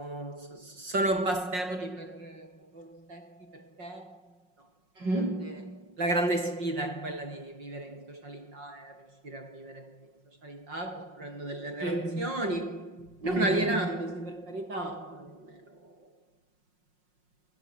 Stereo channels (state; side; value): late; left; 5.5 ms